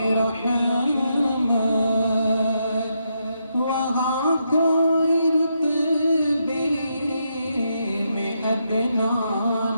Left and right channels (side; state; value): both; inverted; correlation -0.81